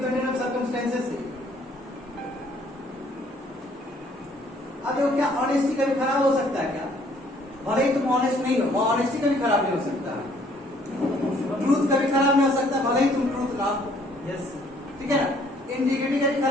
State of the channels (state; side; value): normal; both; correlation 0.62